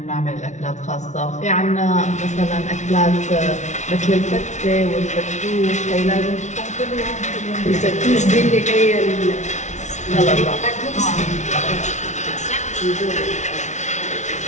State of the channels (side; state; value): right; late; 0.34 ms